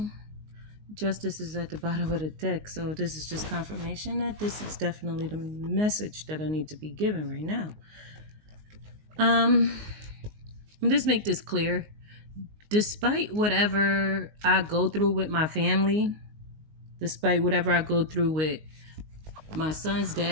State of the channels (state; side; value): late; left; 19 ms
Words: justice is at the bottom of the deck. So this is just confirmation that this is definitely the message that I need to be given right now. Just make this clear. Despite whatever I go through with my family, despite whatever I go through with my son's